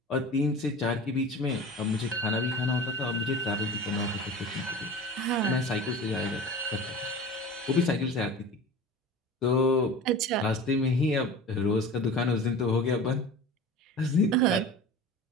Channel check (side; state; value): both; normal; correlation 0.35